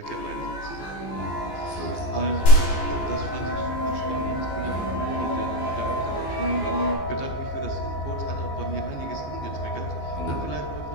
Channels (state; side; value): late; right; 14 ms